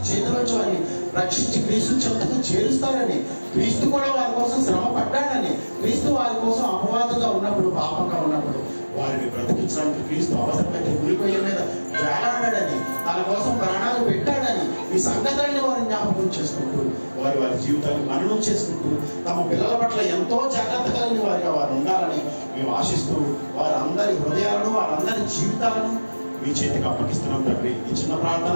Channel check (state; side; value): inverted; both; correlation -1.00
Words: చేతుల నుంచి వారిని రక్షించి క్రీస్తు చెంతకు చేరుస్తారని, క్రీస్తు కూడా వారి కోసం శ్రమ పడ్డాడని, క్రీస్తు వారి కోసం అపవాదుగా ఉన్నప్పుడు, పాపంగా ఉన్నప్పుడు వారిని బ్రతికించడానికి క్రీస్తు అవసరమైతే ఉరికొయ్య మీద వేలాడాడని, తన కోసం ప్రాణాలు పెట్టాడని ఈ సంగతులను వారిని జ్ఞాపకం చేసుకుంటూ, వారి జీవితాన్ని మననం చేసుకుంటూ, తమ పిల్లల పట్ల ఎంతో జాగ్రత్త కలిగిన వారిగా వారు ఉండాలని మేము ఆశిస్తూ, వారందరి హృదయాలను, వారందరి జీవితాలను మీ చేతికి అప్పగిస్తున్నాం తండ్రి. ఈ చిన్న